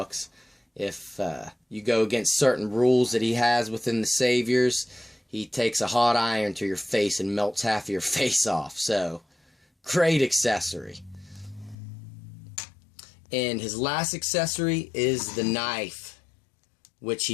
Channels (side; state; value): right; drops out; at 11.8 s